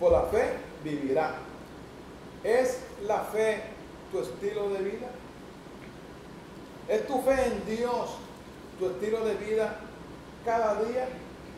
la fe vivirá. ¿Es la fe tu estilo de vida? ¿Es tu fe en Dios tu estilo de vida cada día?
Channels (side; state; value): both; identical; correlation 1.00